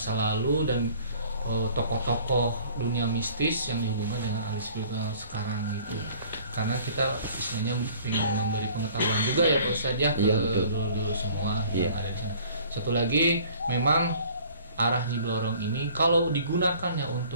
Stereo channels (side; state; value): both; inverted; correlation -0.52